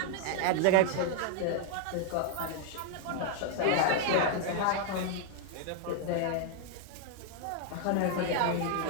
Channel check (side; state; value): both; different; correlation 0.00